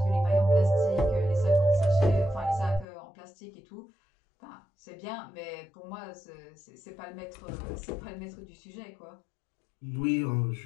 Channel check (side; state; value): right; drops out; at 2.9 s